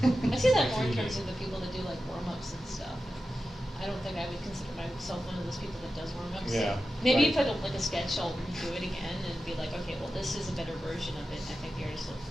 I see that more in terms of the people that do like warm-ups and stuff. I don't think I would consider myself one of those people that does warm-ups. Yeah. Maybe right. if I don't like a sketch, I'll redo it again and be like, okay, well, this is a better version of it. And I think the artist, the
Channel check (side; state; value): both; normal; correlation 0.92